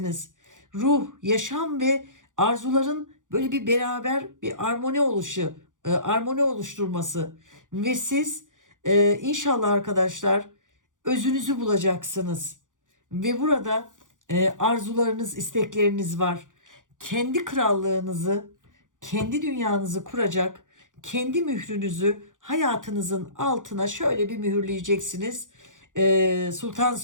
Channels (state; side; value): late; left; 0.87 ms